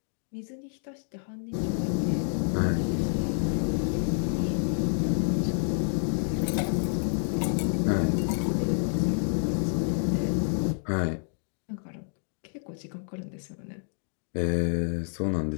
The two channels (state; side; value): silent; right; 57 dB below the other